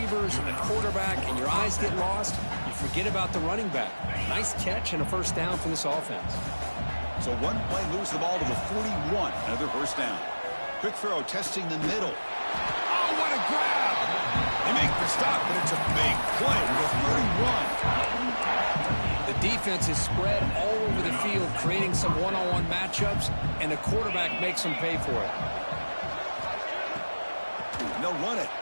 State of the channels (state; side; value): inverted; both; correlation -1.00